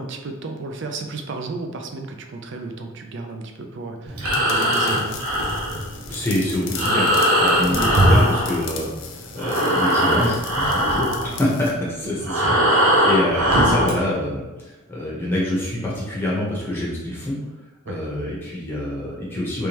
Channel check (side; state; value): both; normal; correlation 0.35